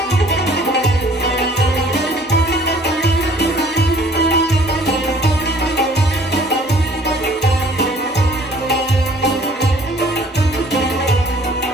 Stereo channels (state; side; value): normal; both; correlation 0.56